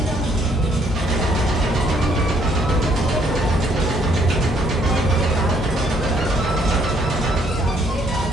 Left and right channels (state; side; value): normal; both; correlation 0.67